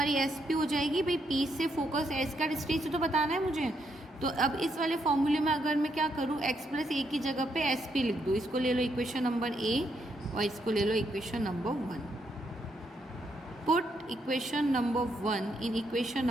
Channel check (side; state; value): both; normal; correlation 0.77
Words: एस पी हो जाएगी, भाई पी से फोकस एस का डिस्टेंस तो बताना है मुझे। तो अब इस वाले फॉर्मूले में अगर मैं क्या करूँ x प्लस ए की जगह पे एस पी लिख दूँ, इसको ले लो इक्वेशन नंबर a और इसको ले लो equation number 1। Put equation number 1 in equation